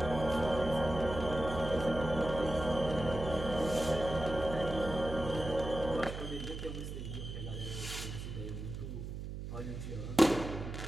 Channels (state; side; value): noise; right; hum, 7 dB below the sound